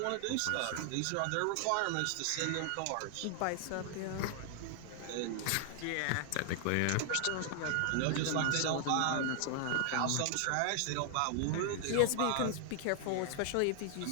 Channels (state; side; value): different; both; correlation 0.00